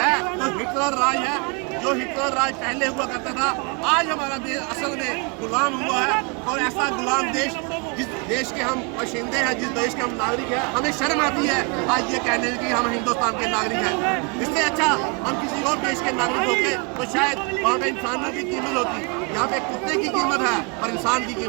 तो हिटलर राज है, जो हिटलर राज पहले हुआ करता था। आज हमारा देश असल में गुलाम हुआ है, और ऐसा गुलाम देश, जिस देश के हम बाशिंदे हैं, जिस देश के हम नागरिक हैं, हमें शर्म आती है आज ये कहने की हम हिंदुस्तान के नागरिक हैं। इससे अच्छा हम किसी और देश के नागरिक होते तो शायद वहाँ पे इंसानों की कीमत होती। यहाँ पे कुत्ते की कीमत है पर इंसान की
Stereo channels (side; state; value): left; quieter; 33.4 dB